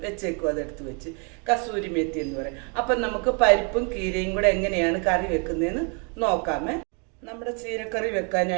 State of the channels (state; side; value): quieter; left; 36.0 dB